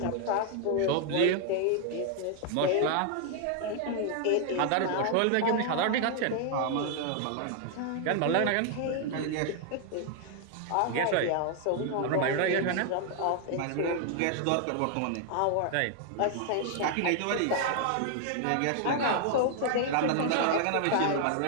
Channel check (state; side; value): different; both; correlation 0.00